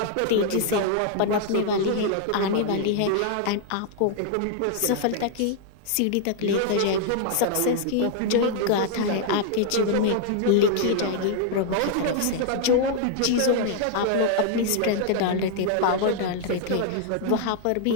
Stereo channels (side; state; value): both; different; correlation -0.01